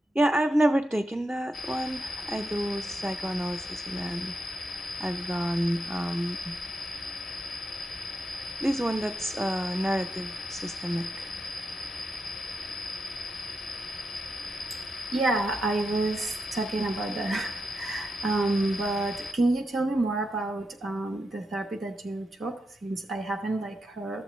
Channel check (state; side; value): normal; both; correlation 0.85